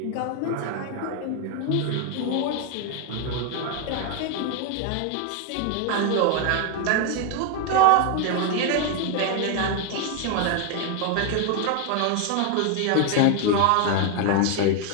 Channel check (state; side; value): different; both; correlation 0.01